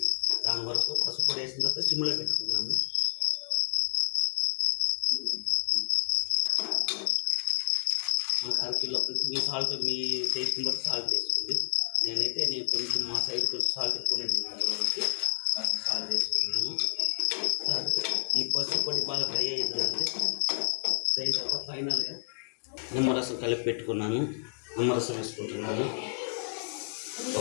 దాని వరకు పసుపు పొడి వేసిన తర్వాత సిమ్లో పెట్టుకున్నాము. మనకు 1/2 కిలో మీ సాల్ట్, మీ టేస్ట్ని బట్టి సాల్ట్ వేసుకోండి. నేను కొంచెం మా సైడ్ కొంచెం సాల్ట్ ఎక్కువనే తింటాను కాబట్టి సాల్ట్ వేసుకున్నాము. ఈ పసుపు పొడి బాగా డ్రై అయ్యిందంటే దాని తర్వాత ఫైనల్గా నిమ్మరసం కలిపి పెట్టుకున్నాను. నిమ్మరసం వేసుకుంటున్నాను.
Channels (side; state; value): right; silent; digital silence